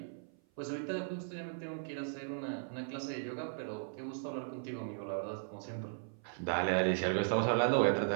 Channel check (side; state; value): left; silent; 53 dB below the other